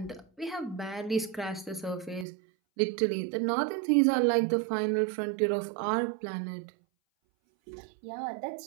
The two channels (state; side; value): drops out; left; at 2.2 s